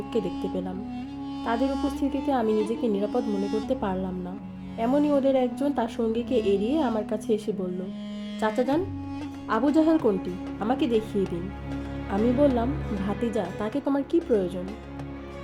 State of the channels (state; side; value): identical; both; correlation 1.00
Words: দেখতে পেলাম। তাদের উপস্থিতিতে আমি নিজেকে নিরাপদ মনে করতে পারলাম না। এমনই ওদের একজন তার সঙ্গীকে এড়িয়ে আমার কাছে এসে বলল, চাচা যান, আবু জাহেল কোনটি, আমাকে দেখিয়ে দিন। আমি বললাম, ভাতিজা, তাকে তোমার কি প্রয়োজন?